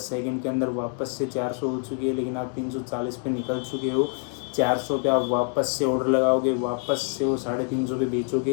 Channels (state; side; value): quieter; right; 38.3 dB